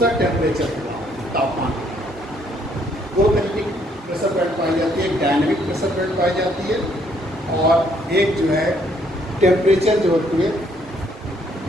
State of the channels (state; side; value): normal; both; correlation 0.67